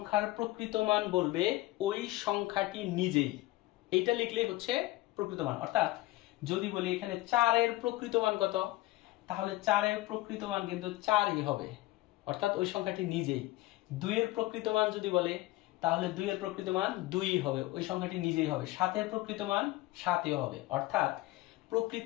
প্রকৃত মান বলবে ওই সংখ্যাটি নিজেই। এইটা লিখলেই হচ্ছে প্রকৃত মান। অর্থাৎ যদি বলি এখানে 4 এর প্রকৃত মান কত, তাহলে 4 এর প্রকৃত মান কিন্তু 4ই হবে, অর্থাৎ ওই সংখ্যাটি নিজেই। 2 এর প্রকৃত মান যদি বলে, তাহলে 2 এর প্রকৃত মান 2ই হবে, ওই সংখ্যাটি নিজেই হবে। 7 এর প্রকৃত মান 7ই হবে। অর্থাৎ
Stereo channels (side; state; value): right; quieter; 18.4 dB